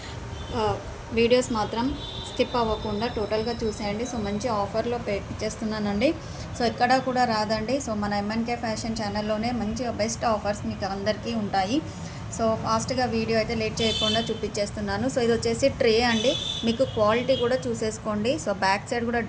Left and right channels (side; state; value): both; identical; correlation 1.00